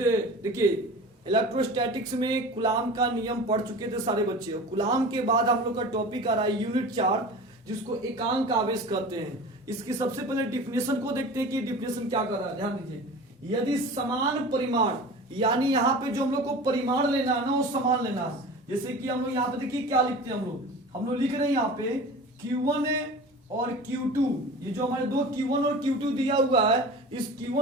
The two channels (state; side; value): normal; both; correlation 0.36